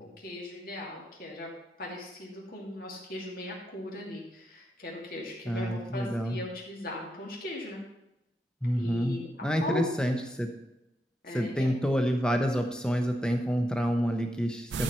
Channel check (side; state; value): both; normal; correlation 0.84